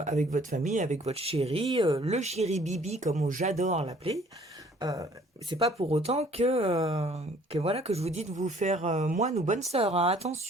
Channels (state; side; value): normal; both; correlation 0.57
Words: votre famille, avec votre chéri, le chéri Bibi, comme j'adore l'appeler. Euh, c'est pas pour autant que voilà que je vous dis de vous faire moine ou bonne sœur, hein.